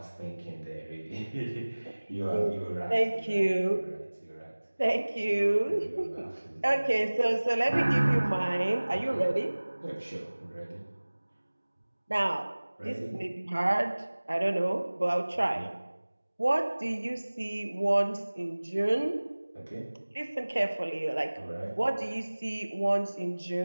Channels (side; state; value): both; inverted; correlation -1.00